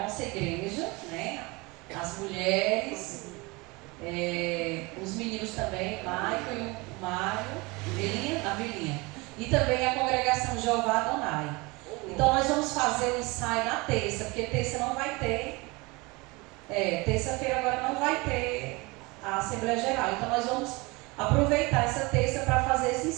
igreja, né? As mulheres, os meninos também, Michael e o Mário, a Belinha. E também a congregação Jeová Adonai. Então nós vamos fazer o ensaio na terça, porque terça não vai ter. Terça-feira agora não vai ter a Assembleia Geral. Então nós vamos aproveitar essa terça para fazer esse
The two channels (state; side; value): quieter; left; 25.2 dB